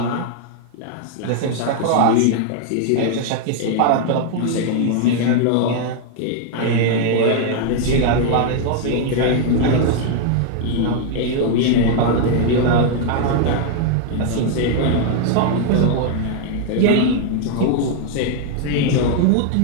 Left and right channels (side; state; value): both; different; correlation 0.00